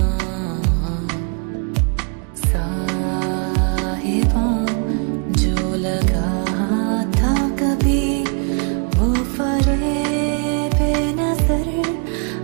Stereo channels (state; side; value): quieter; left; 37.9 dB